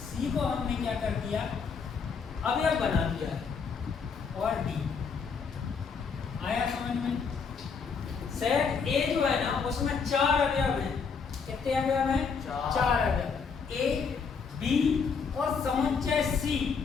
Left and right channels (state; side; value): quieter; right; 5.6 dB